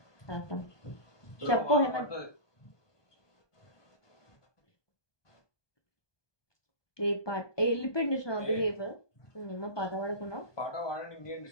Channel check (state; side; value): late; right; 1.2 ms